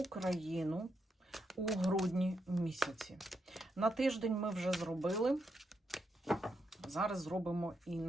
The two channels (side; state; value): both; normal; correlation 0.82